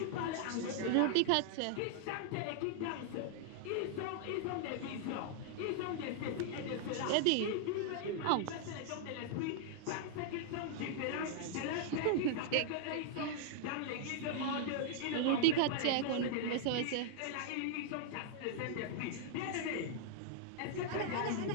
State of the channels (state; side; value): different; both; correlation -0.01